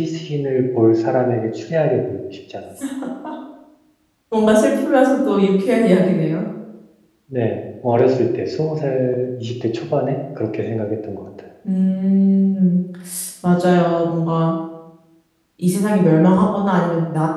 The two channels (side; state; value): both; identical; correlation 1.00